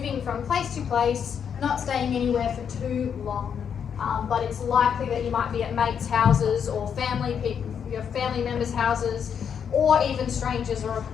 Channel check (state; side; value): quieter; right; 7.6 dB